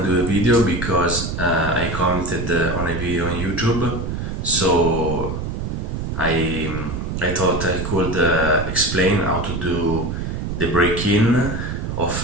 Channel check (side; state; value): right; noise; rumble, 4 dB below the sound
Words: to do a video because I commented on a video on YouTube, so I thought I could explain how to do the break-in